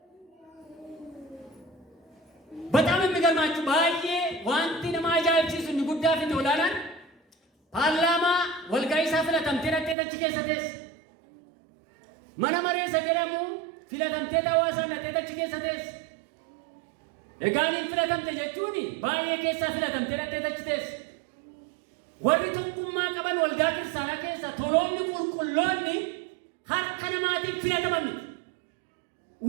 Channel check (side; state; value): left; drops out; at 10.0 s